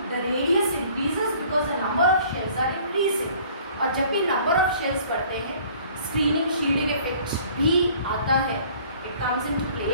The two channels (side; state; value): both; inverted; correlation -0.54